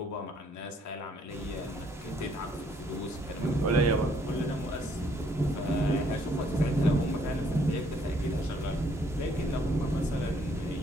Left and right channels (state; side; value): normal; both; correlation 0.66